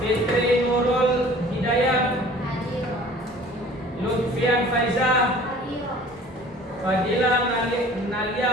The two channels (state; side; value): normal; both; correlation 0.48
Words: Nurul Hidayat, Lutfian Faizah, Fadila